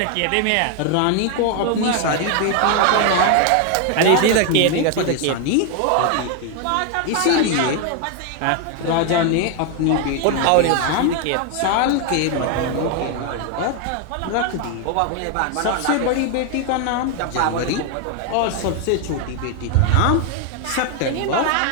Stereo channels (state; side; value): different; both; correlation 0.01